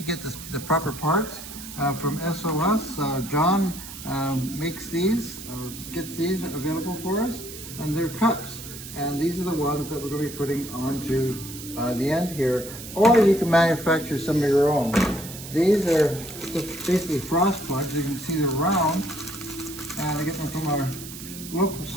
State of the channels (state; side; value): noise; right; hiss, 12 dB below the sound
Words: get the proper parts from SOS. John makes these, or gets these available for us, and they're cups. And these are the ones that we're going to be putting onto the end here, or you can manufacture some of your own. These are just basically frost plugs. You can see they're round, and I get them from our local